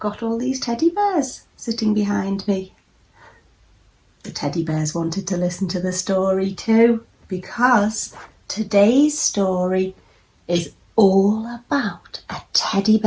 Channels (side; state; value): both; identical; correlation 1.00